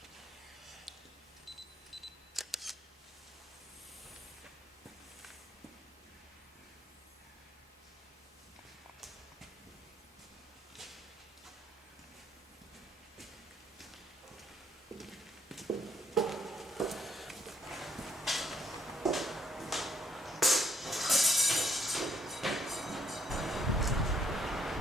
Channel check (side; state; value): both; normal; correlation 0.70